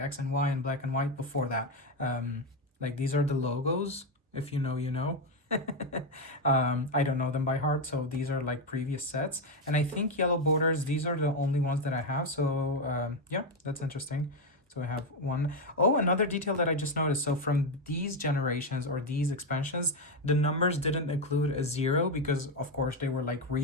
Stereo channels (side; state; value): both; normal; correlation 0.08